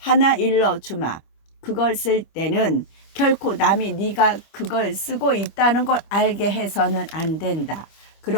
일러주마. 그걸 쓸 때는 결코 남이 네가 그걸 쓰고 있다는 걸 알게 해서는 안 된다.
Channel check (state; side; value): late; right; 25 ms